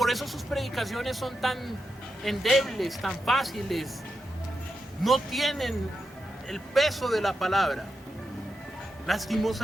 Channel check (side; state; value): both; normal; correlation 0.87